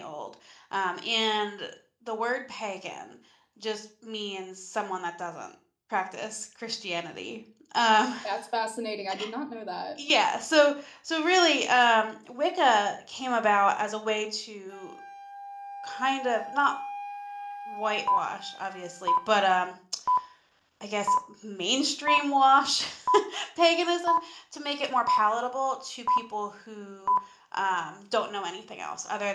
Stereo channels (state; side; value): identical; both; correlation 1.00